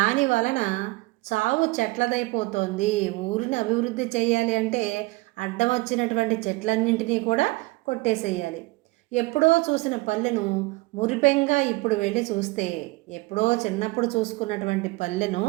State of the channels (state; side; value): quieter; left; 22.8 dB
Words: వలన చావు చెట్లదైపోతుంది. ఊరిని అభివృద్ధి చేయాలి అంటే అడ్డం వచ్చినటువంటి చెట్లన్నింటినీ కూడా కొట్టేసేయాలి. ఎప్పుడో చూసిన పల్లెను మురిపెంగా ఇప్పుడు వెళ్ళి చూస్తే, ఎప్పుడో చిన్నప్పుడు చూసుకున్నటువంటి పల్లెను